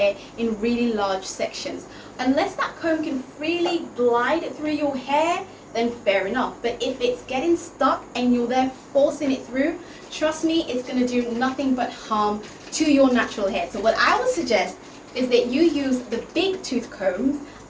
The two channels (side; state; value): both; identical; correlation 1.00